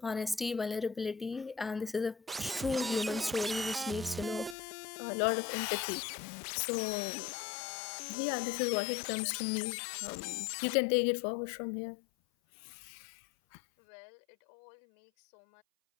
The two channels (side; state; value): right; drops out; at 4.5 s